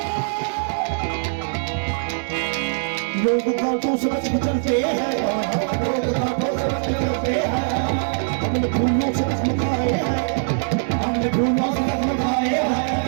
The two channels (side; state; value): left; silent; 64 dB below the other